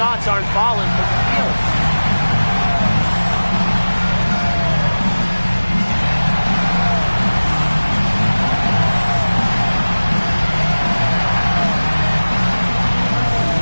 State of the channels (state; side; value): inverted; both; correlation -1.00